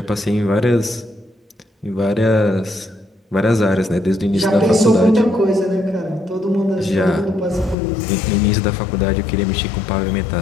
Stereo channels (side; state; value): right; drops out; at 7.8 s